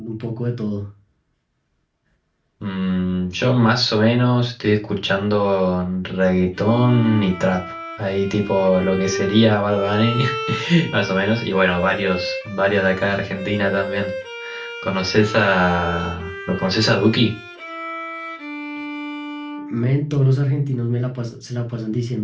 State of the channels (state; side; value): identical; both; correlation 1.00